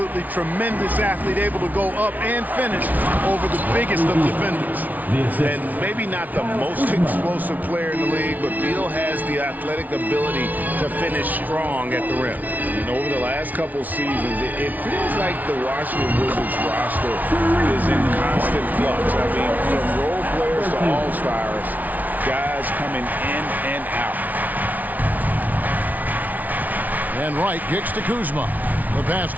tremendous athlete, able to go up and finish over the biggest of defenders. And maybe not the most explosive player in the league, but Beal has the athletic ability to finish strong at the rim. And over the last couple seasons, it feels like the Washington Wizards roster is in constant flux. I mean, from role players to all-stars, guys coming in and out. And Wright kicks to Kuzma. The pass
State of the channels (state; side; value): late; left; 0.077 ms